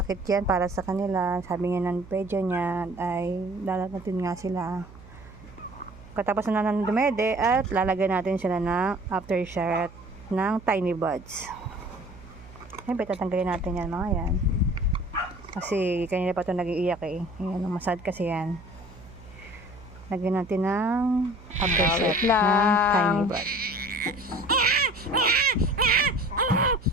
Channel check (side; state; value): right; noise; hum, 20 dB below the sound